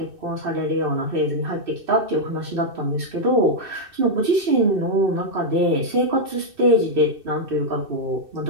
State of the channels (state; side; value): late; left; 2.6 ms